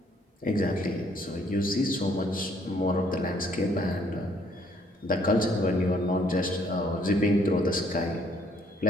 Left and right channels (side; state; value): both; normal; correlation 0.65